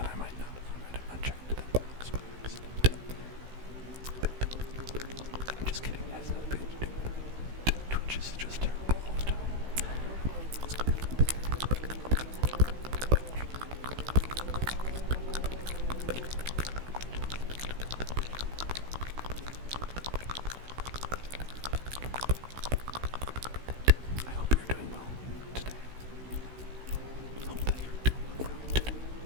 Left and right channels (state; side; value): late; left; 16 ms